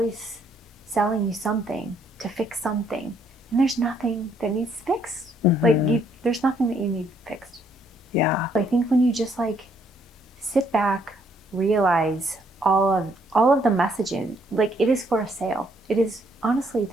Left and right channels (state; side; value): normal; both; correlation 0.69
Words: selling you something to fix something, and there's nothing that needs fixed. Like, there's nothing that you need fixed. Yeah. I think when you just like sit back, realize all of the messaging, like, it is for a sale. It is, honestly,